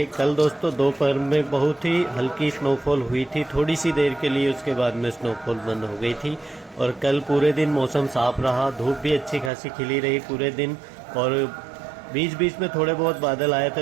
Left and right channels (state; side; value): drops out; left; at 9.5 s